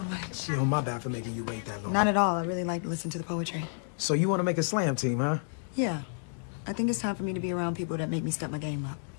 much. Yo, my bad for making you wait that long. Not at all. I really like to listen to the poetry. So you want to make a slam team, huh? Yeah. I think it's time for me to be around people that make me step my game up.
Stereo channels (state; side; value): silent; right; digital silence